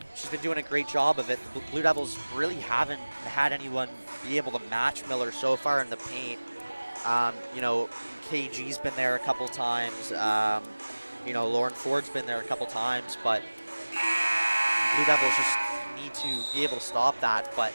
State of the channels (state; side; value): inverted; both; correlation -1.00